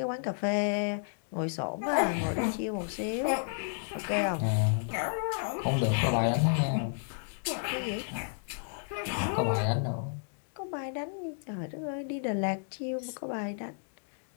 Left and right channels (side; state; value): right; silent; digital silence